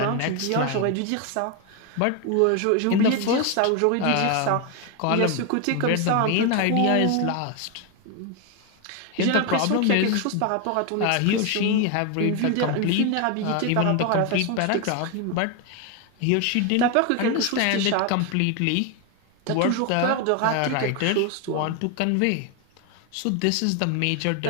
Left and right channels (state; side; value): different; both; correlation 0.01